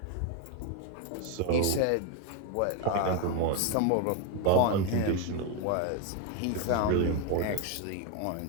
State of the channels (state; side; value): different; both; correlation 0.02